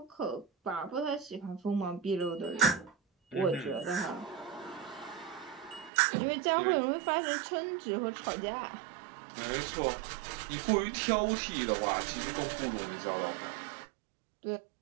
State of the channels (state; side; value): drops out; left; at 5.9 s